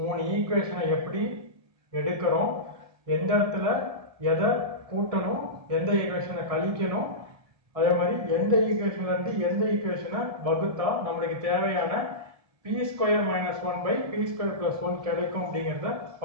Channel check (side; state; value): left; late; 1.7 ms